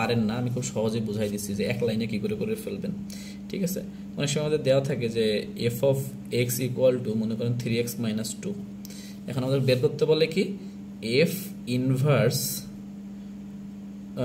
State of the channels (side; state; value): both; identical; correlation 1.00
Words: না, আমি খুব সহজে বুঝাই দিচ্ছি যে এক লাইনে কি করে ফেলবেন। ঠিক আছে, অনেক সময় আমাদের দেওয়া থাকে যে F of x equal two মনে করেন 3x মাইনাস 2। এখন আমাদের বের করতে বলে কি এফ ইনভার্স